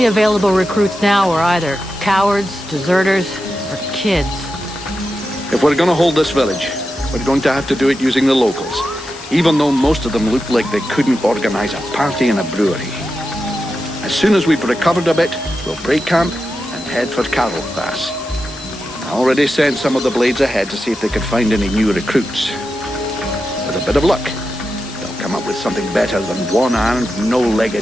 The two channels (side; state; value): left; noise; hiss, 17 dB below the sound